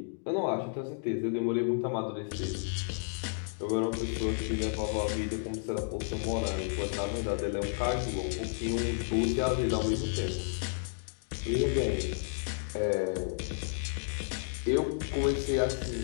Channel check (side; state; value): right; silent; digital silence